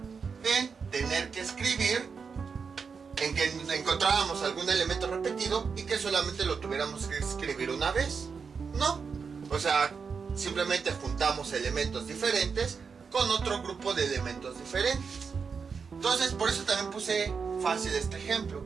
en tener que escribir, en que encontráramos algún elemento repetido y que solamente lo tuviéramos que escribir una vez. No, o sea, simplemente juntamos elementos diferentes con otro grupo de elementos diferentes. Entonces, por eso también puse fácil este ejemplo,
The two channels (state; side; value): quieter; left; 5.6 dB